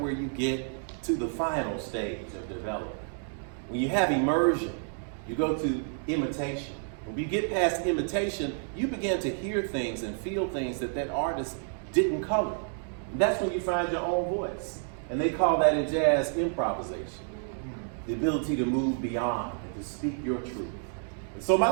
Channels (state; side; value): silent; left; 58 dB below the other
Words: where you get to the final stage of development. When you have immersion, you go to imitation. When you get past imitation, you begin to hear things and feel things that artist didn't color. And that's when you find your own voice. And they call that in jazz improvisation. The ability to move beyond and to speak your truth. And so my